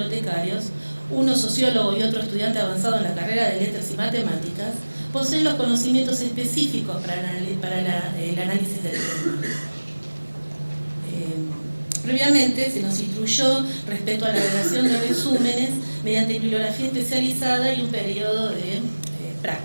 uno sociólogo y otro estudiante avanzado en la carrera de Letras y Matemáticas, poseen los conocimientos específicos para el análisis del tema. Previamente se nos instruyó respecto a la redacción de resúmenes mediante bibliografía especializada y un periodo de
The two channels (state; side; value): inverted; both; correlation -1.00